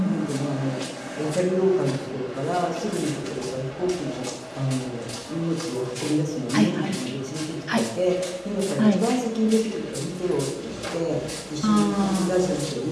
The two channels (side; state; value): both; identical; correlation 1.00